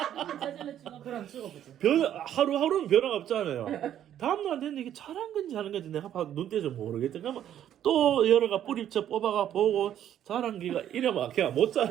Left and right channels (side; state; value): left; quieter; 10.7 dB